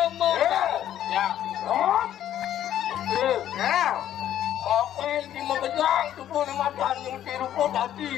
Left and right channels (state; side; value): quieter; right; 11.4 dB